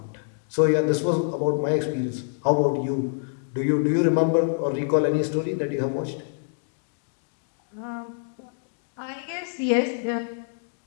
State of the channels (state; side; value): silent; right; digital silence